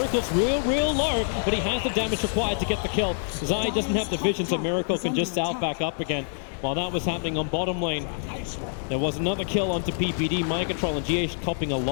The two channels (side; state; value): right; silent; digital silence